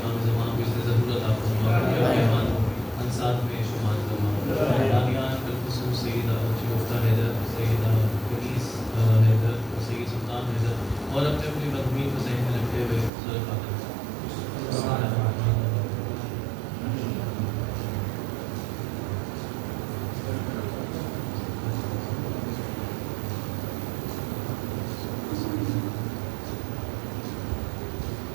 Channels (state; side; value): drops out; left; at 13.1 s